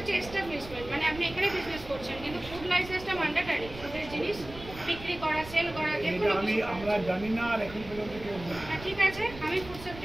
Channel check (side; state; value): right; noise; rumble, 14 dB below the sound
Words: এস্টাবলিশমেন্ট, মানে আপনি এখানে বিজনেস করছেন, কিন্তু ফুড লাইসেন্সটা ম্যান্ডেটরি। ফুডের জিনিস বিক্রি করা, সেল করা, আমরা জানি না আর এখন পর্যন্ত কেউ। ঠিক আছে, আমি ফুড